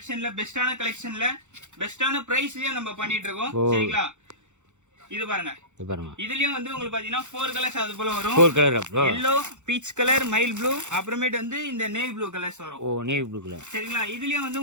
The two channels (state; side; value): late; left; 0.84 ms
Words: பெஸ்டான பிரைஸ்லயே நம்ம பண்ணிட்டு இருக்கோம். சரிங்களா, இது பாருங்க. இதுலயும் வந்து உங்களுக்கு பாத்தீங்கன்னா 4 கலர்ஸ் அது போல வரும். 4 கலர் அப்புறம் yellow, peach colour, mile blue, அப்புறமேட்டு வந்து இந்த நேவி ப்ளூ கலர்ஸ் வரும். Navy blue colour. சரிங்களா, இதுலயும் வந்து